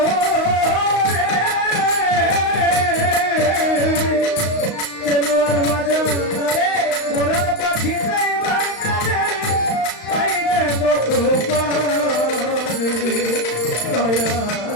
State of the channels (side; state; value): right; late; 35 ms